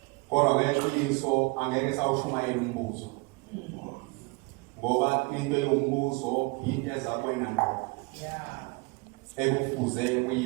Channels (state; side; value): quieter; left; 28.7 dB